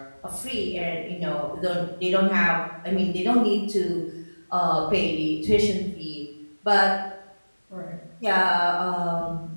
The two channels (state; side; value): inverted; both; correlation -1.00